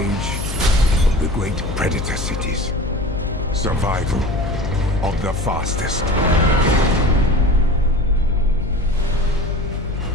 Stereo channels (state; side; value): noise; left; hum, 5 dB below the sound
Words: of the great predator cities. Survival of the fastest.